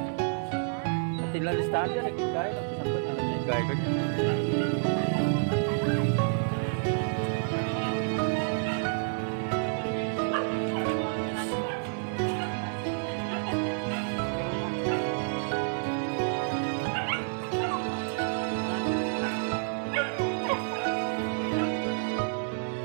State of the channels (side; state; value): left; silent; 58 dB below the other